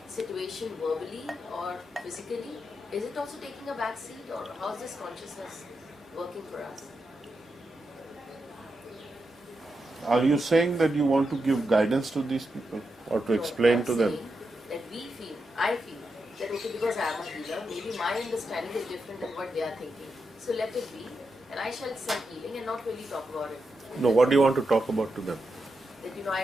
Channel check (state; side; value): normal; both; correlation 0.86